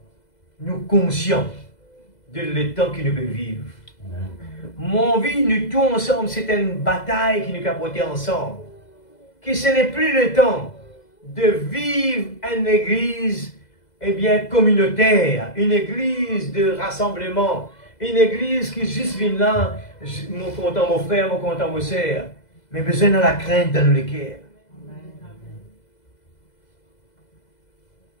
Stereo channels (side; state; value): right; late; 2.0 ms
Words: nous conscients de l'état que nous devons vivre. Amen. Mon envie, nous tous ensemble, c'est une bataille qui nous a porté ensemble. Que ce n'est plus le temps de vivre une église, eh bien, communautaire, une église de rassemblement, une église qui juste vient là, mon content mon frère, mon content mon sœur, mais besoin de la crainte dans le cœur.